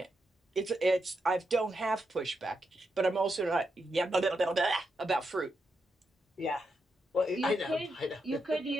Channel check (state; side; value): normal; both; correlation 0.84